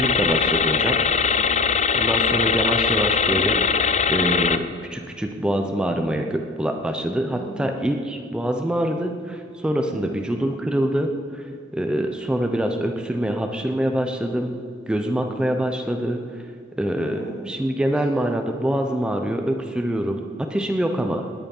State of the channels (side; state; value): both; normal; correlation 0.56